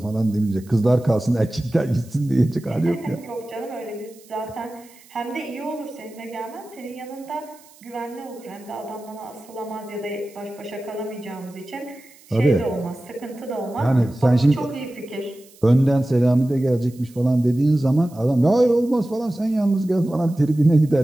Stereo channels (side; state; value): right; noise; hiss, 26 dB below the sound